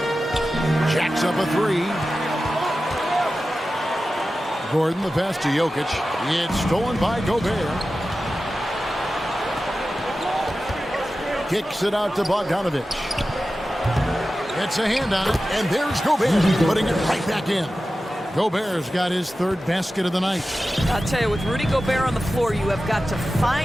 Jacks up a 3. Gordon, the pass to Jokic. It's stolen by Gobert. Kicks it out to Bogdanovic. It's a hand on it, and there's Gobert putting it right back in. Gobert's got his third basket of the night. I'll tell you, with Rudy Gobert on the floor, you have got to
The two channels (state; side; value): normal; both; correlation 0.94